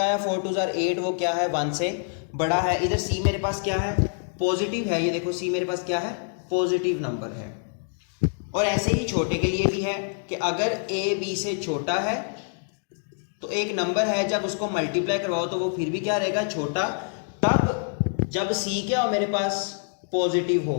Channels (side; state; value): right; silent; 61 dB below the other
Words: है 4 2 8, वो क्या है 1 से बड़ा है। इधर c मेरे पास क्या है, पॉजिटिव है, ये देखो c मेरे पास क्या है, पॉजिटिव नंबर है। और ऐसे ही छोटे के लिए भी है कि अगर a b से छोटा है तो एक नंबर है जब उसको मल्टीप्लाई करवाओ तो वो फिर भी क्या रहेगा, छोटा, तब जब c क्या हो मेरे पास, पॉजिटिव